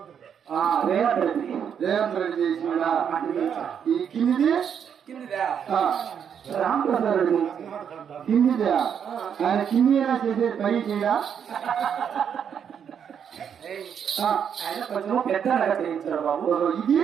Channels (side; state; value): left; quieter; 7.9 dB